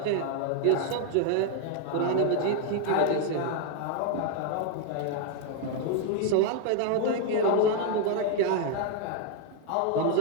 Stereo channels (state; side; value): different; both; correlation 0.00